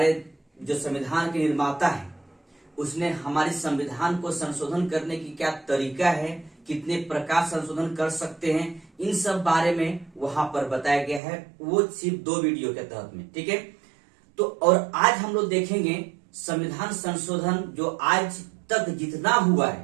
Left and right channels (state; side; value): drops out; left; at 11.2 s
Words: जो संविधान के निर्माता है उसने हमारे संविधान को संशोधन करने की क्या तरीका है, कितने प्रकार संशोधन कर सकते हैं, इन सब बारे में वहां पर बताया गया है। वो सिर्फ 2 वीडियो के तहत में, ठीक है। तो और आज हम लोग देखेंगे संविधान संशोधन जो आज तक जितना हुआ